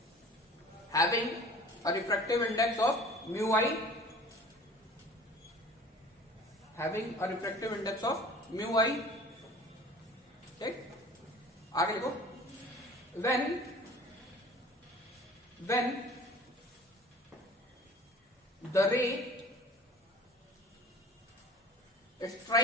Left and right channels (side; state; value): both; normal; correlation 0.45